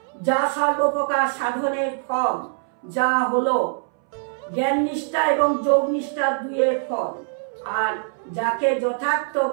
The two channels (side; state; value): left; silent; 63 dB below the other